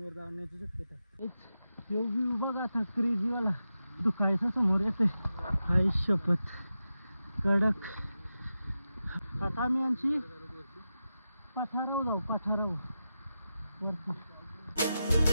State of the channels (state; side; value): inverted; both; correlation -0.91